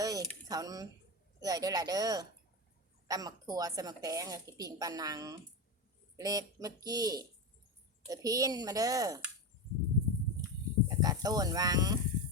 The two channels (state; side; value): normal; both; correlation 0.17